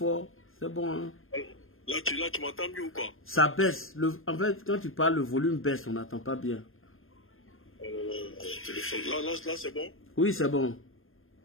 c'est bon, hein? Là, tu m'entends mieux ou quoi? Ça baisse. En fait, quand tu parles, le volume baisse, on n'entend pas bien. Téléphone. Là, c'est bon? Oui, c'est bon.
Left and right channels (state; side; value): late; right; 0.60 ms